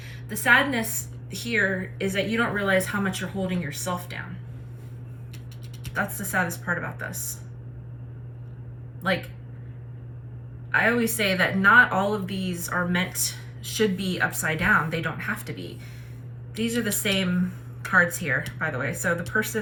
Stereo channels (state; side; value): identical; both; correlation 1.00